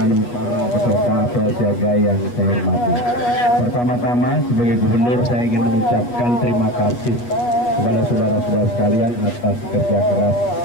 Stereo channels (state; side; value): late; right; 8.3 ms